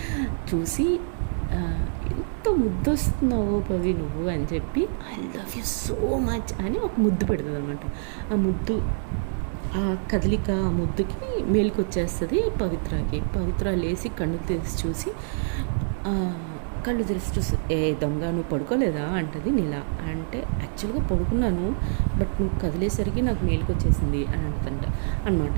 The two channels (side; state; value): left; silent; digital silence